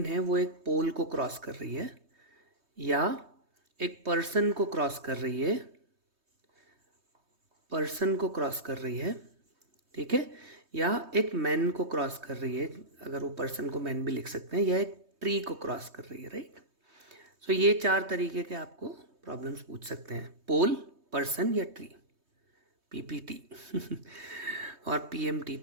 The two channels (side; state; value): left; late; 3.2 ms